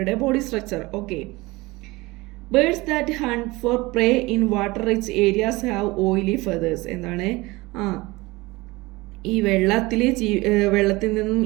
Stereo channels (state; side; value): quieter; left; 21.8 dB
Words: body structure. Okay, birds that hunt for prey in water rich areas have oily feathers. എന്താണ്? ഈ വെള്ളത്തിൽ നിന്നും